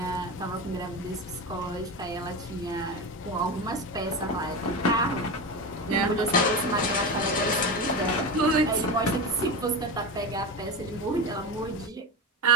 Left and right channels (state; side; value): normal; both; correlation 0.21